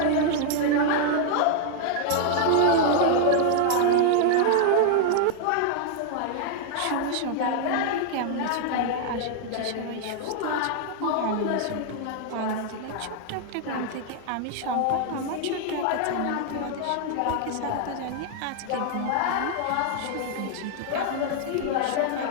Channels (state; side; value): different; both; correlation 0.00